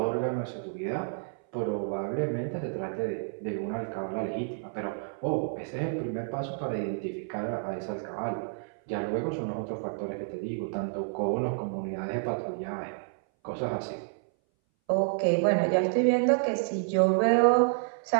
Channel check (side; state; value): left; silent; 58 dB below the other